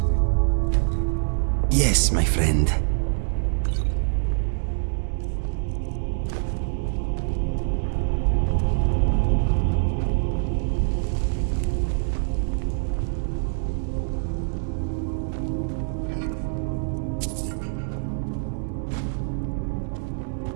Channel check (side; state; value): left; silent; digital silence